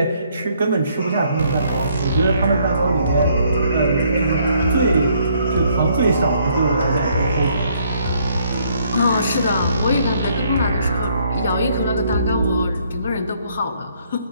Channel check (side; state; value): both; inverted; correlation -0.68